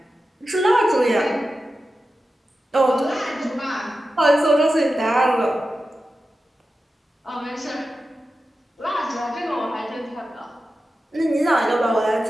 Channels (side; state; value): both; normal; correlation 0.92